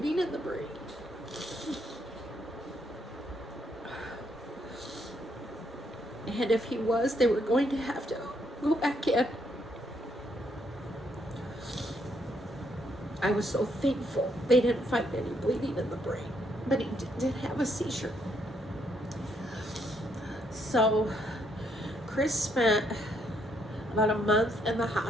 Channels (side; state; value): both; normal; correlation 0.73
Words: in the brain. And if he was, they were going to have to go back in. I was so thankful they didn't find any bleeding in the brain, but he did have a seizure. So Kris spent about a month in the